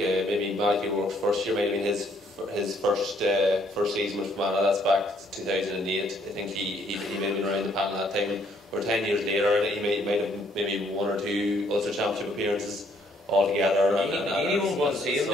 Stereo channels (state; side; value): normal; both; correlation 0.67